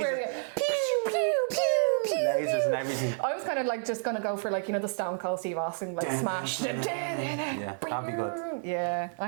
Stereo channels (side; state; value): left; silent; 58 dB below the other